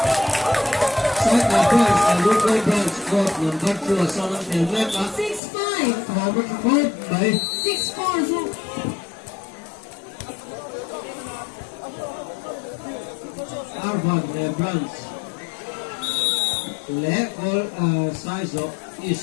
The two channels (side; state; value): right; drops out; at 5.4 s